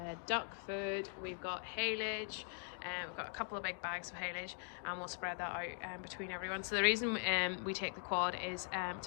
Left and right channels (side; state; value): right; silent; 50 dB below the other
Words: duck food, we've got haylage, we've got a couple of big bags of haylage, and we'll spread that out between everyone. So the reason we take the quad is